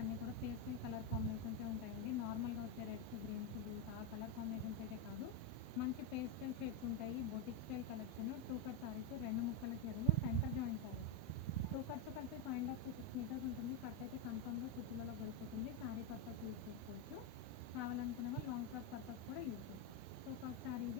అన్నీ కూడా పేస్టల్ కలర్ కాంబినేషన్సే ఉంటాయండి. నార్మల్గా వచ్చే రెడ్స్, గ్రీన్స్, బ్లూస్ ఆ కలర్ కాంబినేషన్స్ అయితే కాదు, మంచి పేస్టల్ షేడ్స్ ఉంటాయి. Boutique style collection, two cut saris, రెండు ముక్కల చీరలు, centre joint saris. Two cuts కలిపి 5.5 to 6 మీటర్స్ ఉంటుంది. కట్ అయితే కన్ఫర్మ్గా కుచ్చులలో వెళ్ళిపోతుంది. శారీ పర్పస్ యూజ్ చేసుకోవచ్చు, కావాలనుకునే వాళ్ళు లాంగ్ ఫ్రాక్ పర్పస్ కూడా యూజ్ చేసుకోవచ్చు. సో ఫస్ట్ శారీ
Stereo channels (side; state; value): right; late; 8.0 ms